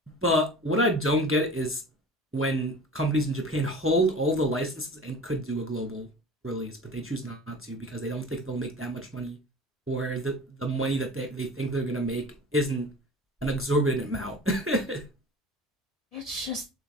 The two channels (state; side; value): normal; both; correlation 0.39